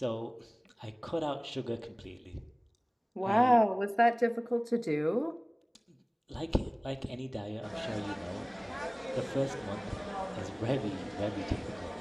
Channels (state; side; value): identical; both; correlation 1.00